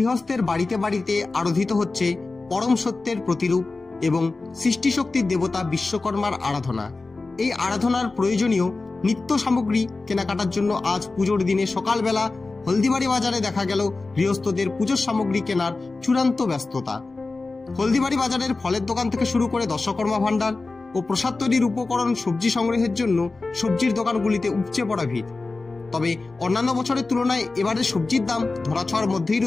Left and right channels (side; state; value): right; quieter; 3.5 dB